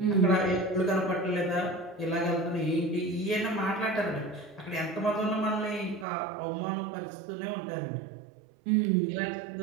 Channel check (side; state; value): left; drops out; at 6.1 s